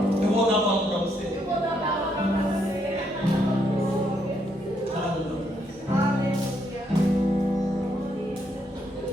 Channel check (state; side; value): normal; both; correlation 0.75